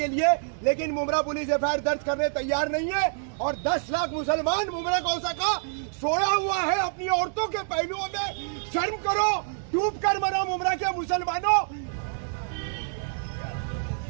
लिए, लेकिन मुमरा पुलिस एफआईआर दर्ज करने तैयार नहीं है। और 10 लाख मुसलमान मुमरा कौसा का सोया हुआ है अपनी औरतों के पहलुओं में। शर्म करो, डूब कर मरो मुमरा के मुसलमानों।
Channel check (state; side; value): silent; left; digital silence